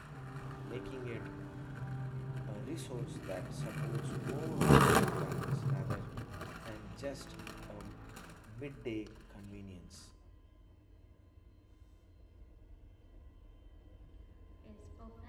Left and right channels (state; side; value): identical; both; correlation 1.00